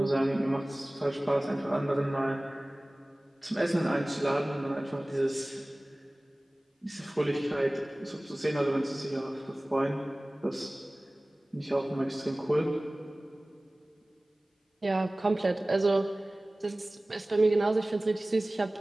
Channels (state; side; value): normal; both; correlation 0.98